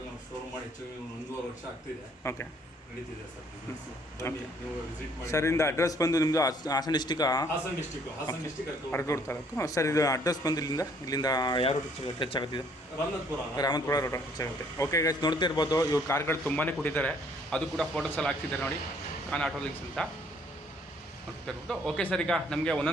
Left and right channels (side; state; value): both; normal; correlation 0.62